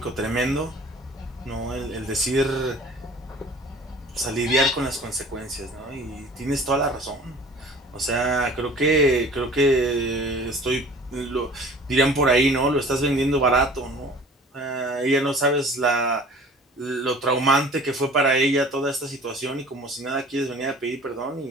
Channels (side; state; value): both; normal; correlation 0.46